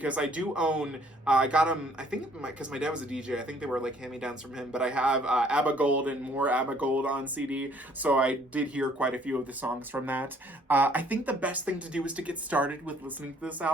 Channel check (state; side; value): normal; both; correlation 0.61